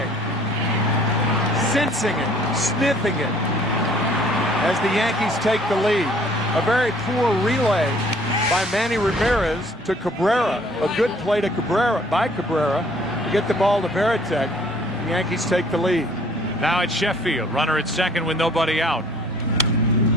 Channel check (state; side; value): normal; both; correlation 0.57